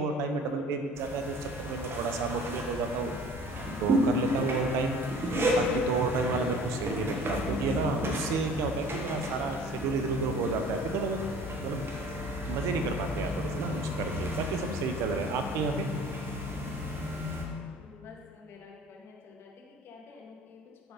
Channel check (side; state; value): both; normal; correlation 0.47